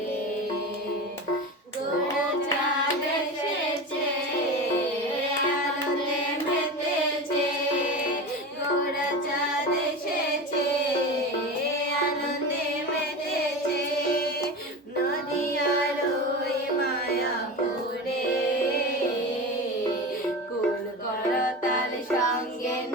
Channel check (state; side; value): normal; both; correlation 0.27